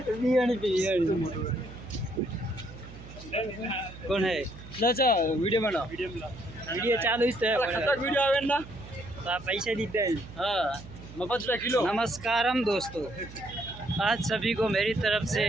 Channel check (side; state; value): right; noise; hum, 16 dB below the sound